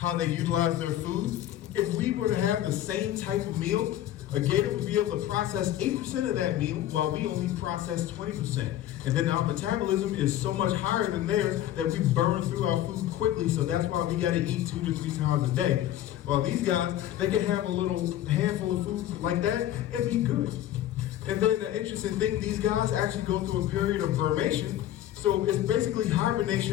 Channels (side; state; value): right; quieter; 12.7 dB